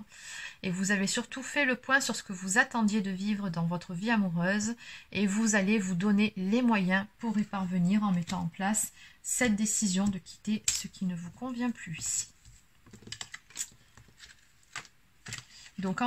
Et vous avez surtout fait le point sur ce que vous attendiez de vivre dans votre vie amoureuse. Et vous allez vous donner les moyens pour y parvenir en mettant en place cette décision de quitter ce qui ne vous convient plus ici. Donc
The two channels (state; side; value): identical; both; correlation 1.00